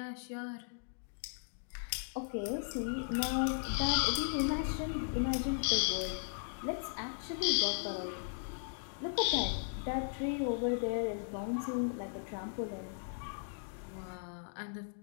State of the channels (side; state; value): right; silent; digital silence